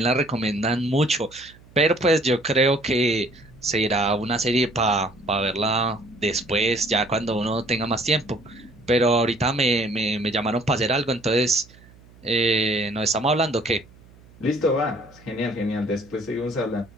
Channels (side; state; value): right; noise; hum, 25 dB below the sound